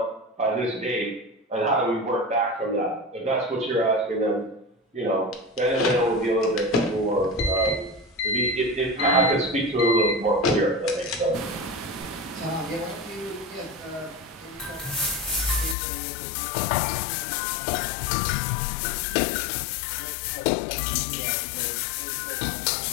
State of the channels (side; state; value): right; drops out; at 15.8 s